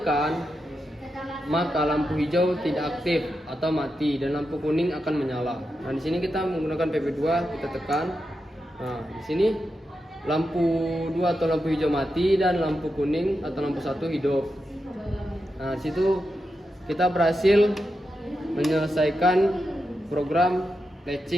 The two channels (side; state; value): both; normal; correlation 0.88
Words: maka lampu hijau tidak aktif atau mati dan lampu kuning akan menyala. Nah, di sini kita menggunakan PB2, kita tekan. Nah, di sini lampu 2 atau lampu hijau mati dan lampu kuning atau lampu 1 hidup. Nah, di situ kita berhasil menyelesaikan program